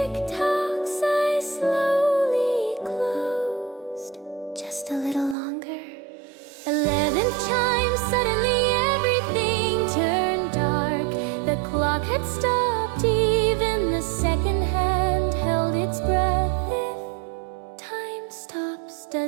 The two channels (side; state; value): left; drops out; at 5.4 s